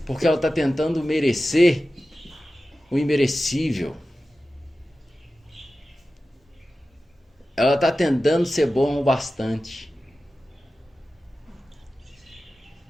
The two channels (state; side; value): normal; both; correlation 0.94